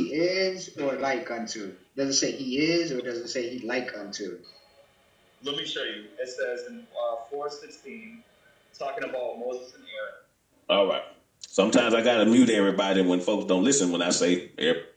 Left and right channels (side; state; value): both; identical; correlation 1.00